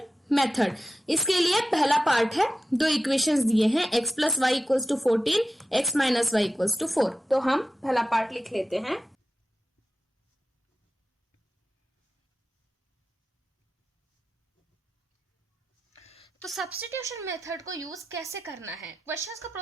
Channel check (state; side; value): normal; both; correlation 0.93